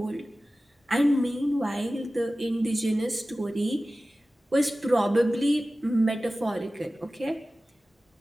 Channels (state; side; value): normal; both; correlation 0.96